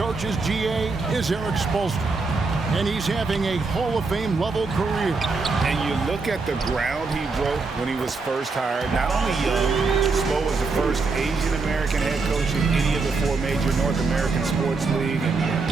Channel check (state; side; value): quieter; left; 4.1 dB